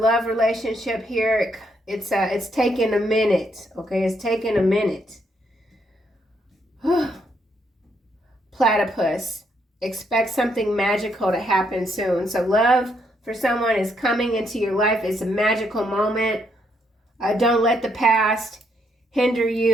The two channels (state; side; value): normal; both; correlation 0.74